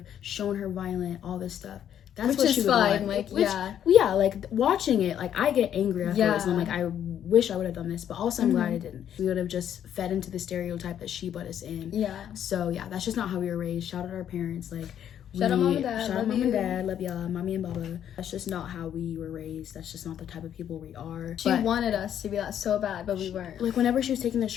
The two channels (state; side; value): quieter; right; 9.9 dB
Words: shown her violent, all this stuff. That's Which what is she would fine, want. like, yeah. Yeah, like, watching it, like, I get angry afterwards. And I'm Yeah. like, I wish I would have done this. But also, I'm glad Mhm. I didn't. We would have just fed into the stereotype that she put us in. Yeah. So, yeah, that's just not how we were raised. Shout out our parents. Like, Shout out Mom and Dad. Shout out Love Mom you. and Dad. Love y'all. Mommy and Baba. That's just not how we were raised. That's just not the type of people we are. She But, wanted us to be that so bad, but we weren't. like, whenever she was taking the